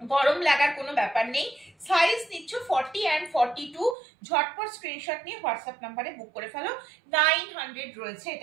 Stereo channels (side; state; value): left; drops out; at 4.0 s